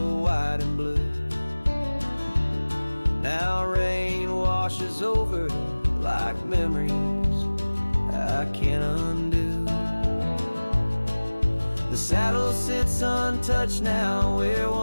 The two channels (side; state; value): both; inverted; correlation -1.00